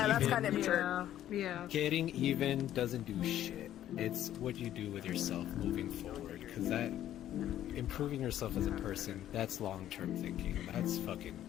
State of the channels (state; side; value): quieter; right; 12.0 dB